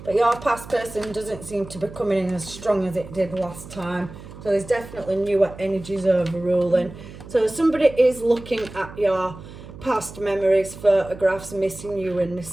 But your past person doesn't seem to be coming in as strong as it did last time. So there's definitely newer energies overruling. So somebody is looking at your past memories, photographs, missing you and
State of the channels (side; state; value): right; noise; hum, 16 dB below the sound